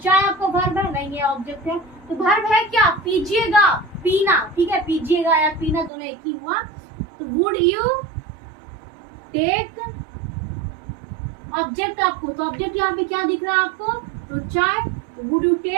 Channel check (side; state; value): left; drops out; at 5.9 s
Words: आपका वर्ब है? नहीं, ये ऑब्जेक्ट है। तो वर्ब है क्या? पीजिएगा, पीना, ठीक है, पीजिएगा या पीना दोनों एक ही हुआ। तो वुड यू टेक ऑब्जेक्ट आपको, तो ऑब्जेक्ट यहाँ पे क्या दिख रहा है आपको? तो चाय। वुड यू